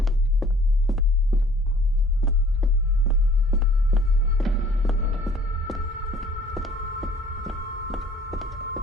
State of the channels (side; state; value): both; normal; correlation 0.54